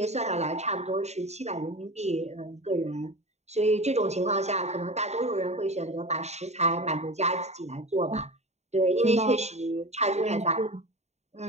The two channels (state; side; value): late; left; 0.32 ms